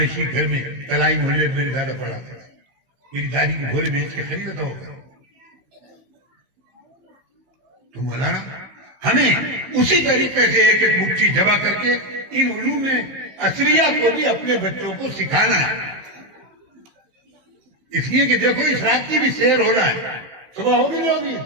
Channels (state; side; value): late; left; 15 ms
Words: گھر میں تلائی محلے میں میرے دادا پڑا تھا. میری دادی کے گھوڑے بیچ کے خریدتا ہوگا. تو مولانا ہمیں اسی طریقے سے ایک ایک مٹھی جمع کر کے ان علوم عصریہ کو بھی اپنے بچوں کو سکھانا ہے. اس لیے کہ دیکھو اس رات کی بھی سیر ہو رہا ہے، صبح ہوگی نہیں ہوگی.